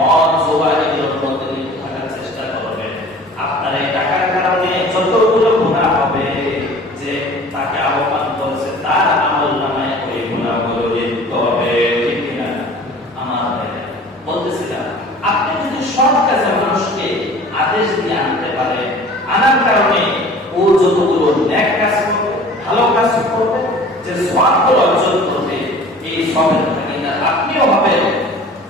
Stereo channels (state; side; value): normal; both; correlation 0.45